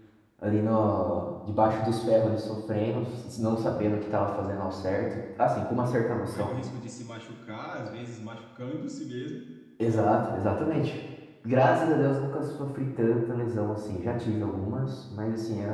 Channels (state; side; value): identical; both; correlation 1.00